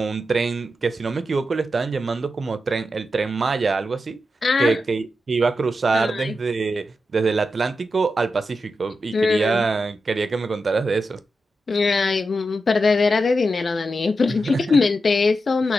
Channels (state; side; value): normal; both; correlation 0.88